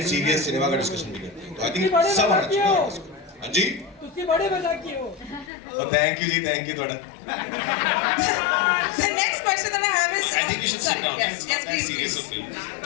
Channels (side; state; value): right; drops out; at 5.5 s